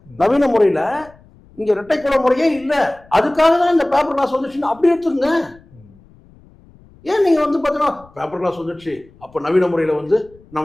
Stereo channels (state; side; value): noise; left; rumble, 27 dB below the sound